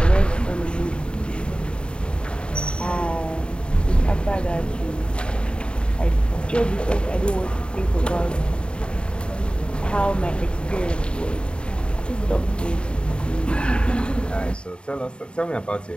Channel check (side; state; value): right; late; 0.053 ms